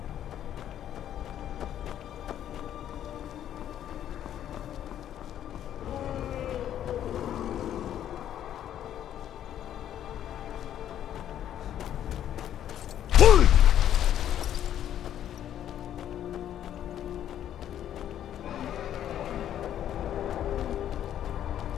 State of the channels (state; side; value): quieter; right; 10.8 dB